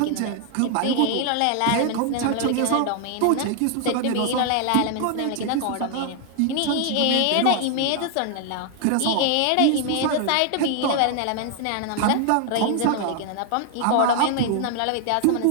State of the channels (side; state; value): both; different; correlation 0.00